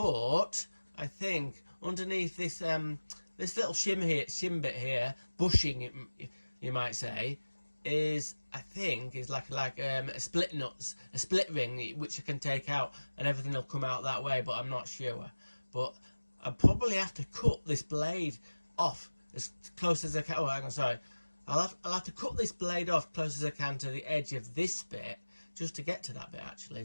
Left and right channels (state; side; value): inverted; both; correlation -1.00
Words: I think underneath this this little shim bit here, bushing you might say, is like a split ring which I can take out, and everything will come out that way, but I'm not sure. But I'll probably have to cut this blade off as close as I can. Oh, hang on, sorry. I'll have to cut this blade off close as I can to the edge of this bit, just to get to that bit actually.